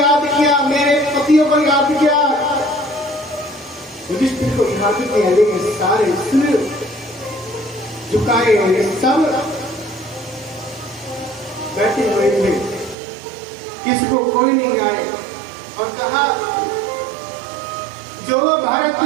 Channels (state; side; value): drops out; left; at 13.0 s